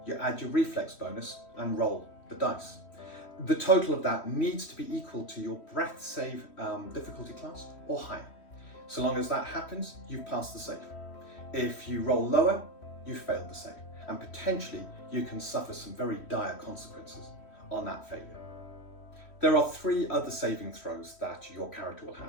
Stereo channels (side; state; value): right; late; 3.1 ms